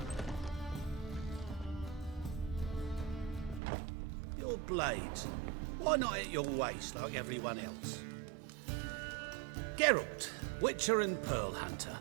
Your blades. Why not at your waist like everyone else? Geralt, Witcher and Pearl Hunter.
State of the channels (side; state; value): left; drops out; at 3.6 s